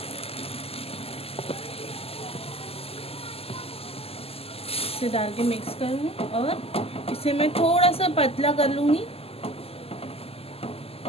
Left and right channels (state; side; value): late; right; 0.29 ms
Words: इसे डाल के मिक्स करूँगी और इसे मैं थोड़ा सा पतला कर लूँगी।